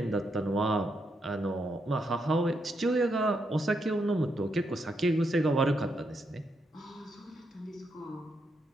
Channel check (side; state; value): both; normal; correlation 0.80